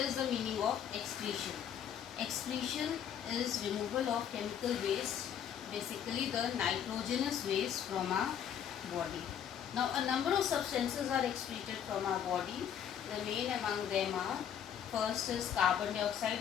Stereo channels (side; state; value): right; quieter; 9.0 dB